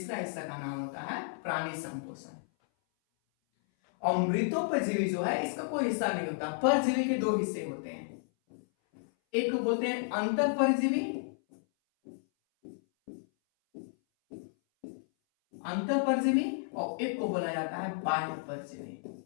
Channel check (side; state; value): right; silent; 56 dB below the other